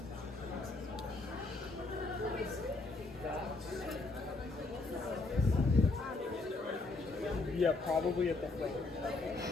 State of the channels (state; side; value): quieter; right; 3.4 dB